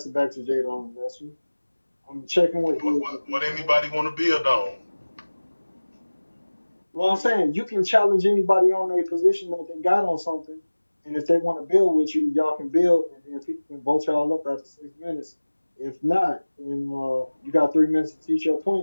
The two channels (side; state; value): both; inverted; correlation -1.00